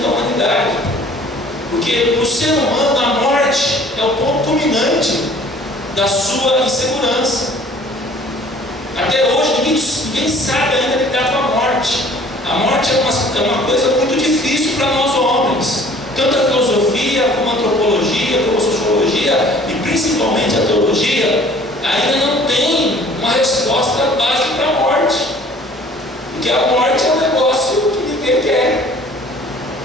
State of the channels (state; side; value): normal; both; correlation 0.52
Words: da humanidade. Porque o ser humano, a morte é o ponto culminante da sua insegurança. Até hoje ninguém sabe ainda lidar com a morte. A morte é uma coisa muito difícil para nós homens. Tanto a filosofia, como a antropologia, como a sociologia e principalmente a teologia ainda não tem uma resposta básica para a morte. Porque a morte é um negócio que ninguém quer.